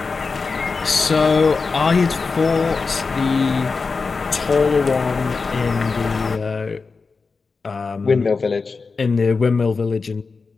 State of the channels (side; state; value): right; quieter; 4.5 dB